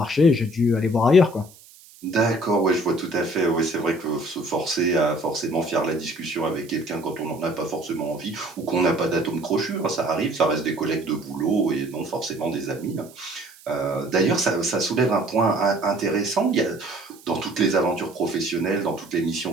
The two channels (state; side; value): noise; right; hiss, 23 dB below the sound